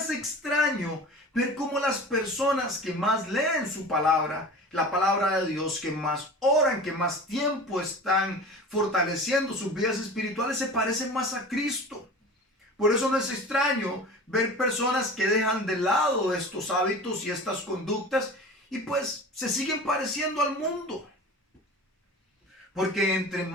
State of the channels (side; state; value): both; normal; correlation 0.37